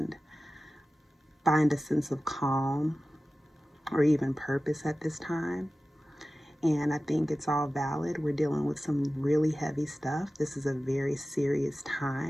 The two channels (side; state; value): both; normal; correlation 0.95